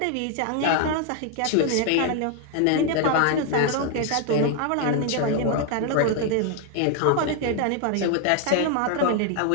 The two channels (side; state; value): both; different; correlation 0.00